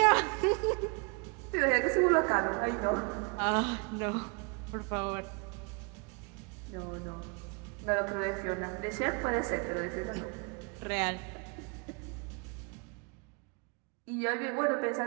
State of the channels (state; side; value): quieter; left; 33.2 dB